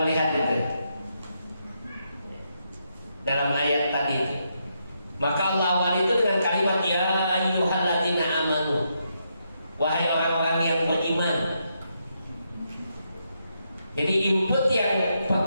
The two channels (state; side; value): inverted; both; correlation -0.80